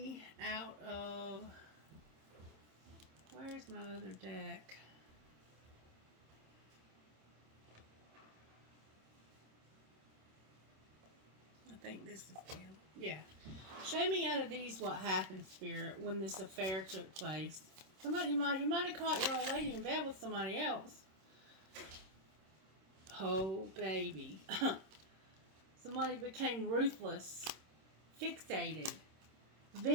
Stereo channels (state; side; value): late; left; 26 ms